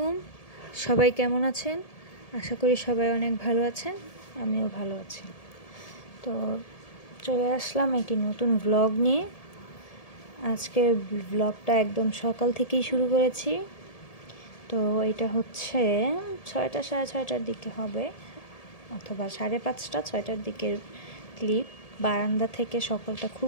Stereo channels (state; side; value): late; right; 1.7 ms